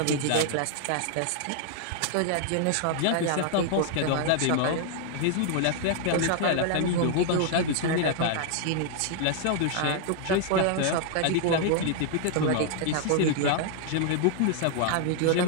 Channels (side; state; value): both; different; correlation 0.00